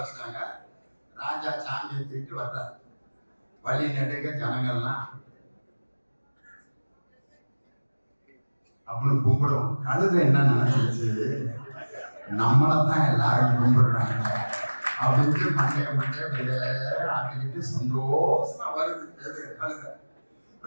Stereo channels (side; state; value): both; inverted; correlation -1.00